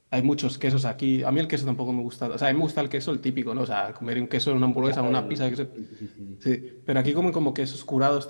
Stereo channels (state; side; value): inverted; both; correlation -1.00